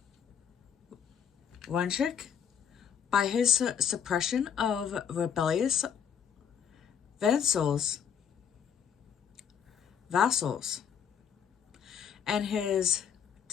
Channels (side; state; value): right; quieter; 7.9 dB